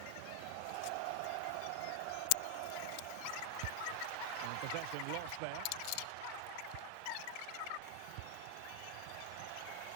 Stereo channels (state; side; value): different; both; correlation 0.00